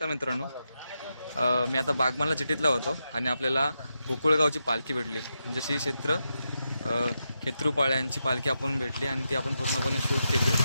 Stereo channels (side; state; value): both; inverted; correlation -0.86